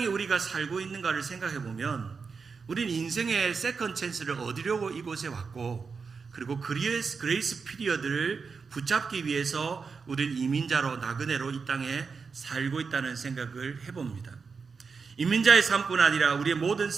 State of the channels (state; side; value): quieter; left; 5.2 dB